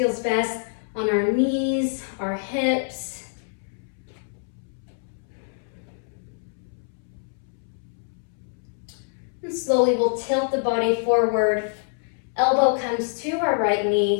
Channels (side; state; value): right; silent; 61 dB below the other